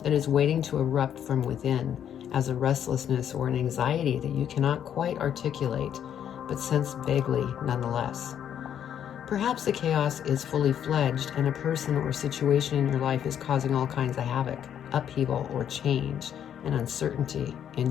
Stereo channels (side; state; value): right; quieter; 9.4 dB